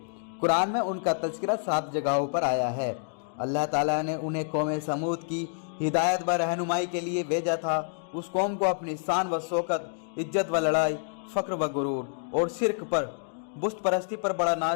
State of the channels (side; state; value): right; silent; digital silence